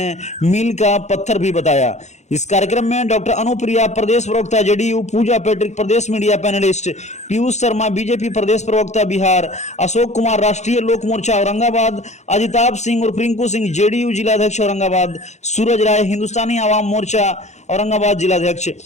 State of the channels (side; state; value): right; late; 0.33 ms